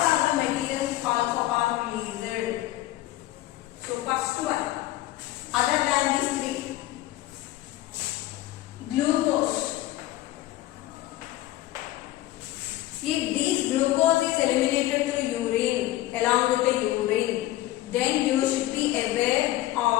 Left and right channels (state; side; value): quieter; right; 15.8 dB